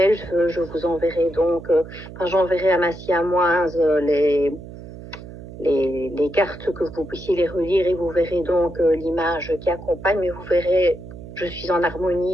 je vous enverrai donc, j'enverrai à ma siamoise les cartes que vous puissiez les relire et vous verrez donc l'image qui accompagne, mais vous verrez, je suis en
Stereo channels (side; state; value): right; noise; hum, 14 dB below the sound